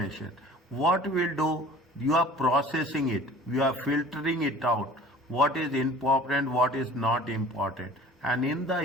What we'll do? You are processing it. You are filtering it out. What is important, what is not important. And in the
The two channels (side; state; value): both; normal; correlation 0.46